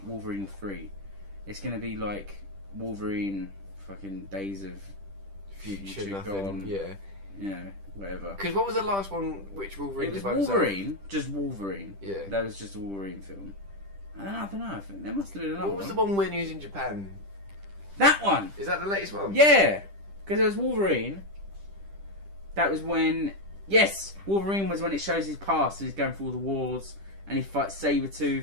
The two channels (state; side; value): late; left; 10 ms